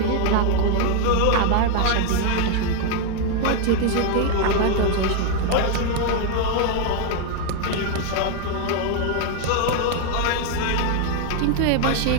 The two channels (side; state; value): both; different; correlation 0.01